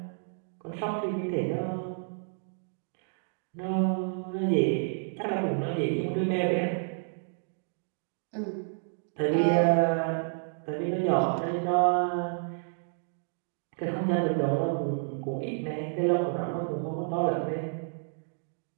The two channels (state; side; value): silent; left; digital silence